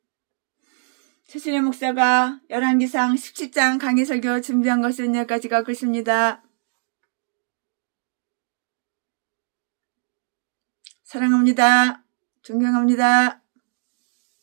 최순애 목사가 열왕기상 17장 강해설교 준비한 것은 여기까지가 끝입니다. 사랑합니다. 존경합니다.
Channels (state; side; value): silent; left; digital silence